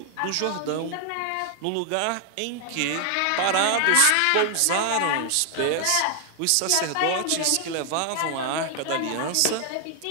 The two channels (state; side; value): different; both; correlation 0.00